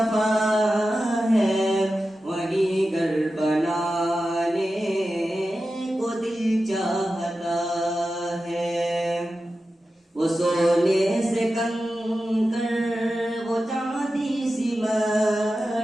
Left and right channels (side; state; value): both; normal; correlation 0.93